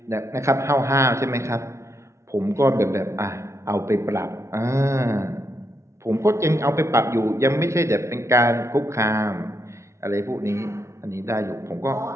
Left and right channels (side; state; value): left; late; 0.14 ms